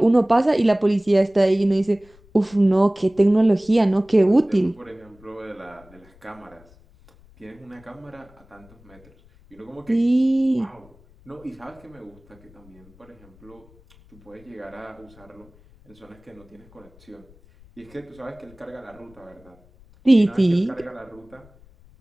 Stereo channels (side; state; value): left; noise; rumble, 27 dB below the sound